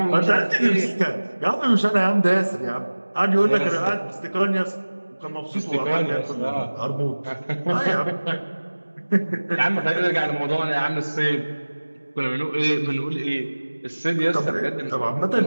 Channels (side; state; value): both; inverted; correlation -1.00